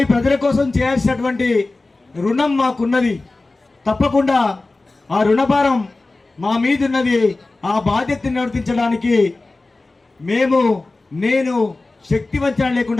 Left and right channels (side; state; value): right; quieter; 3.2 dB